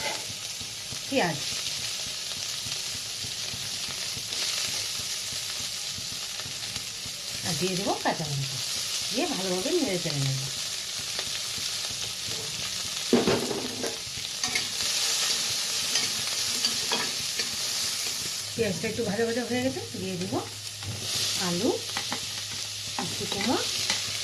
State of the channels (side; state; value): both; identical; correlation 1.00